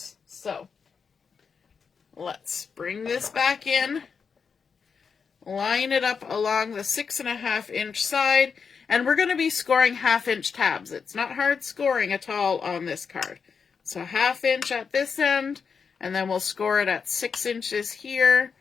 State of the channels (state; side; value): quieter; right; 5.9 dB